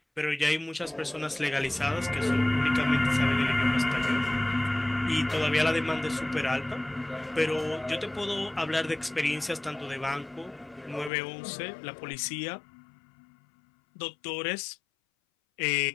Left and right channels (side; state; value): right; drops out; at 11.1 s